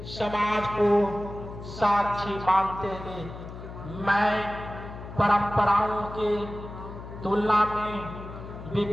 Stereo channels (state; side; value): noise; left; hum, 12 dB below the sound